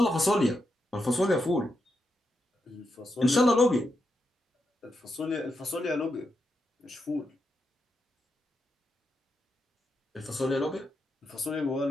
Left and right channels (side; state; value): both; normal; correlation 0.85